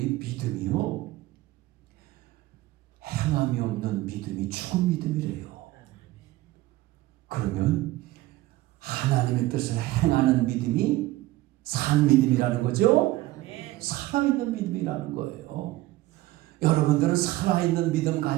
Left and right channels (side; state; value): left; quieter; 17.3 dB